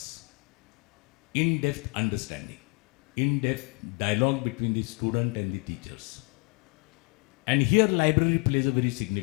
in-depth understanding, in-depth dialogue between the student and the teachers. And here library plays a very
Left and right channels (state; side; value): quieter; right; 32.8 dB